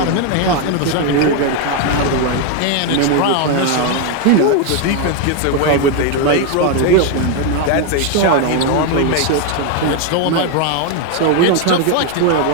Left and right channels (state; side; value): different; both; correlation 0.01